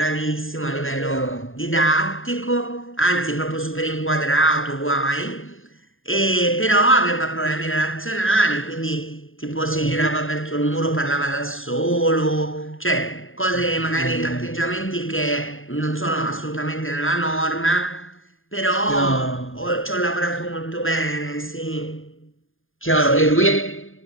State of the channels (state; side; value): late; right; 0.59 ms